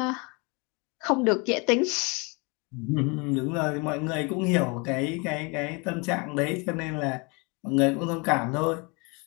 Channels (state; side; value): quieter; right; 30.1 dB